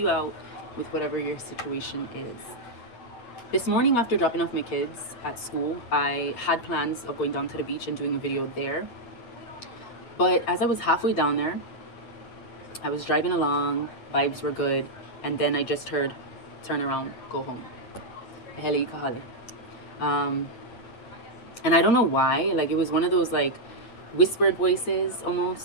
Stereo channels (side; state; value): right; late; 8.5 ms